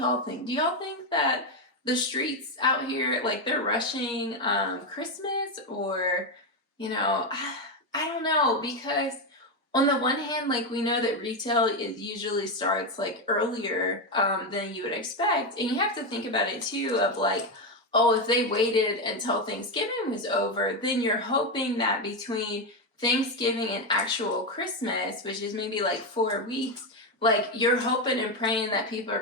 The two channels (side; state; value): both; normal; correlation 0.09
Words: y'all think? Do y'all think that the streets out here, like, they're rushing Christmas, or... You know, I don't know, because on the one hand, like we know that retail usually starts like earlier than you would expect. And you have to think about it too of like, oh, if they waited until Thanksgiving was over, then you're hoping that between Thanksgiving and actual Christmas, which is maybe like 4 weeks, like you're hoping and praying that people